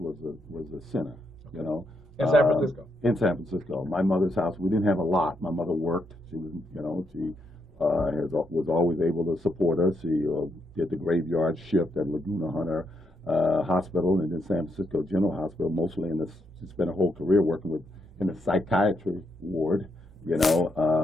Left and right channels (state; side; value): normal; both; correlation 0.79